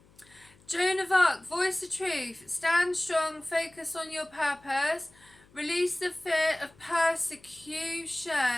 Joan of Arc, voice the truth, stand strong, focus on your purpose, release the fear of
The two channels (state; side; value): noise; left; hum, 29 dB below the sound